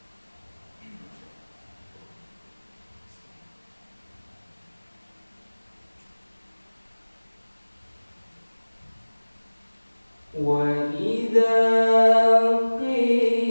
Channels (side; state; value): both; inverted; correlation -1.00